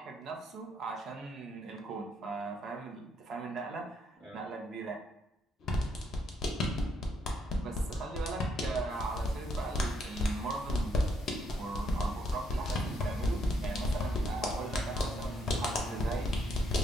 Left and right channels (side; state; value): both; normal; correlation 0.74